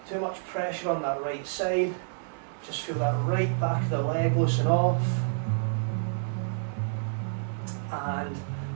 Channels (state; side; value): silent; left; 59 dB below the other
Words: too much pressure on that right side. Just feel that right back of the leg loosen off. And